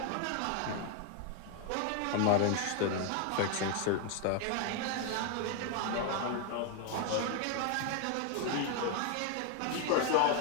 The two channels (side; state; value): both; different; correlation 0.00